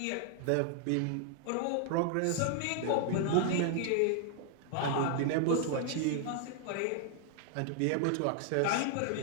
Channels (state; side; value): different; both; correlation 0.00